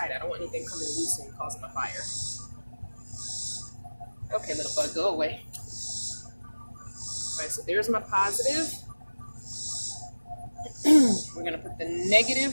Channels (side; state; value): both; inverted; correlation -1.00